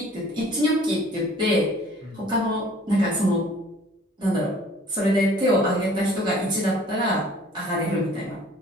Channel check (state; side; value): normal; both; correlation 0.52